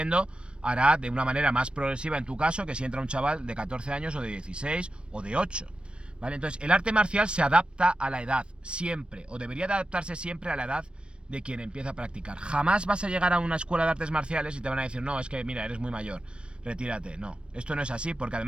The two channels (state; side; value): late; left; 0.057 ms